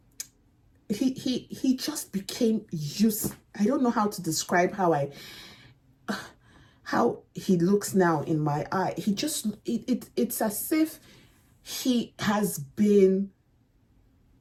he just became used. I don't know how to describe how he looks now in my eye. He just, it's as if he has been,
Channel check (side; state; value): both; identical; correlation 1.00